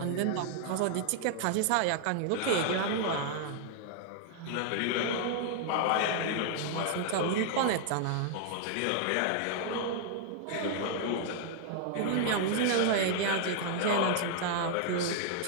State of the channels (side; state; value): both; different; correlation 0.00